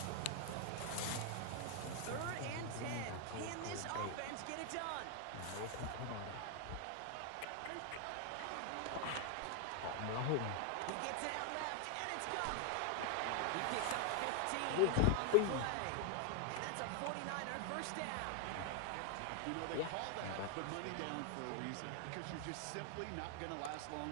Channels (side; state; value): both; different; correlation 0.00